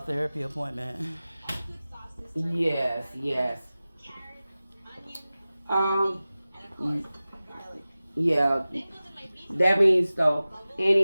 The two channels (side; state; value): both; inverted; correlation -0.97